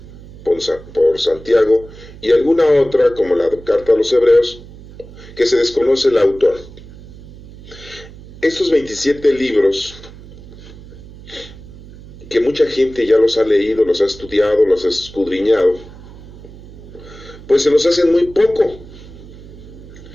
por Santiago, y alguna otra, como la carta a los Hebreos, que se desconoce el autor. Estos 27 libros, que mucha gente ya los ha leído, los ha estudiado, los ha escudriñado, pues se nos hacen muy poca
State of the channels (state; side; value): noise; right; hum, 18 dB below the sound